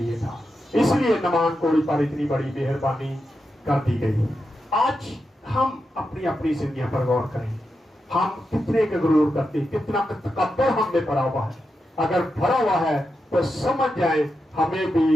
था, इसलिए नमान कोड़ी पर इतनी बड़ी मेहरबानी कर दी गई। आज हम अपनी अपनी जिंदगी पर गौर करें, हम कितने का गुरूर करते, कितना तकब्बुर हम में भरा हुआ है। अगर भरा हुआ है तो समझ जाए हमें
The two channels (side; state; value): both; normal; correlation 0.88